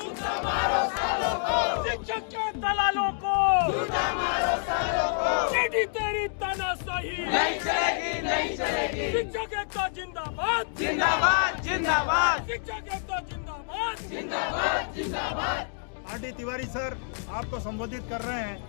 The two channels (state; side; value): silent; right; digital silence